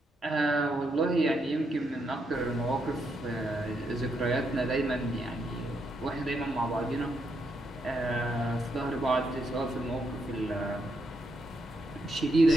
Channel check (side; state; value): both; normal; correlation 0.79